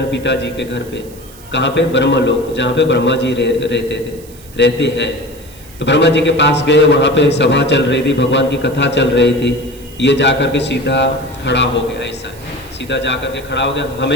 पिताजी के घर पे। कहाँ पे? ब्रह्मलोक, जहाँ पे ब्रह्मा जी रहते हैं। तो ब्रह्मा जी के पास गए, वहाँ पे सभा चल रही थी, भगवान की कथा चल रही थी। ये जा कर के सीधा खड़ा हो गया, ऐसा सीधा जा कर के खड़ा हो गया।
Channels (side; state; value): right; noise; hiss, 22 dB below the sound